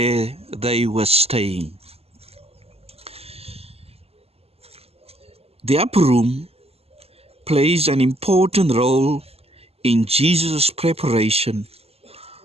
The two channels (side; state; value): left; late; 0.29 ms